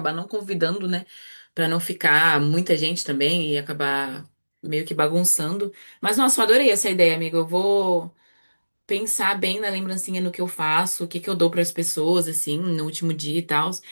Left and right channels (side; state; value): both; inverted; correlation -1.00